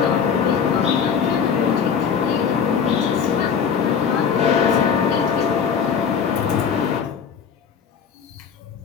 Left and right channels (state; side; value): quieter; right; 6.9 dB